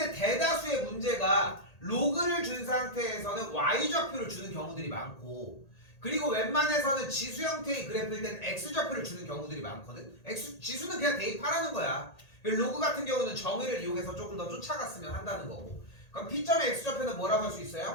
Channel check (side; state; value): right; late; 1.8 ms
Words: 대다수의 문제가 로그를 준 상태에서는 Y좌표를 주는 경우들이 많고, 그리고 웬만해서는 지수 형태의 그래프일 때는 X좌표를 주는 경우들이 많거든. 지수는 그냥 대입하라는 거야. 로그 같은 경우는 정의를 이용해서 조금 더 쫓아갔으면 한다는 거고. 그럼 P점의 X좌표는 뭐라고 할 수